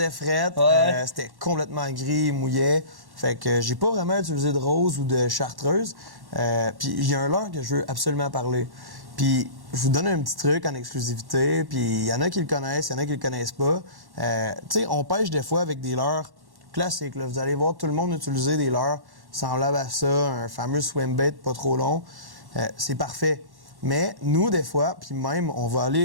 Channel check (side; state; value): left; late; 1.1 ms